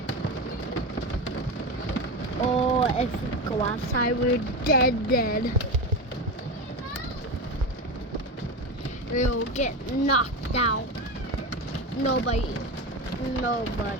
Oh, if we go outside, we're dead. We'll get knocked out. Nobody's going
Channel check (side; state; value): both; normal; correlation 0.20